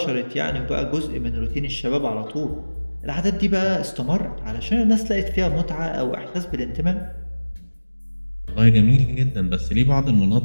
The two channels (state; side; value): inverted; both; correlation -1.00